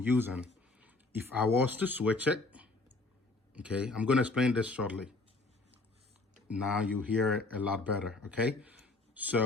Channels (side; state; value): right; quieter; 3.3 dB